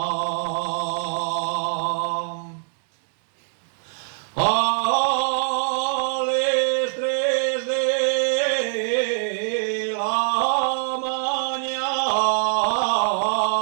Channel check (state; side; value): silent; left; digital silence